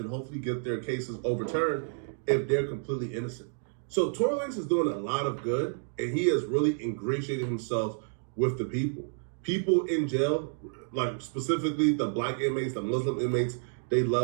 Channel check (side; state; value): left; silent; digital silence